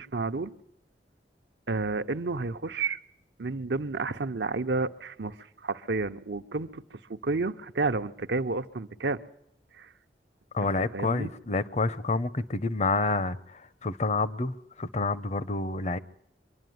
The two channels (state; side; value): normal; both; correlation 0.12